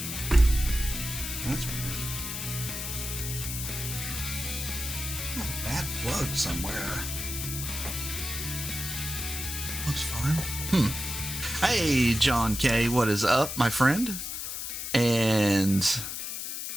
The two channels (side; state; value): left; noise; hiss, 5 dB below the sound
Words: That's weird. Oh, bad plug somewhere. Looks fine. Hey, John K., what is up, my friend? And...